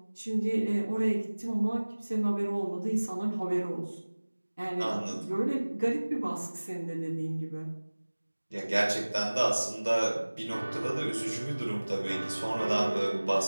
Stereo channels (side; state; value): both; inverted; correlation -1.00